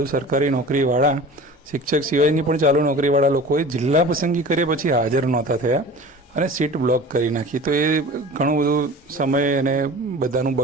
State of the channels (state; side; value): normal; both; correlation 0.39